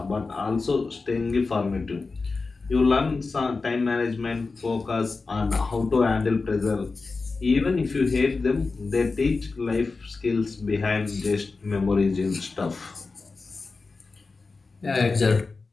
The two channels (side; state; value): right; quieter; 4.0 dB